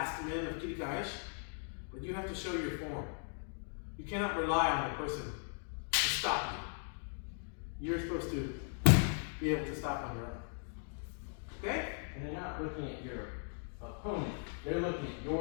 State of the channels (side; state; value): right; silent; 52 dB below the other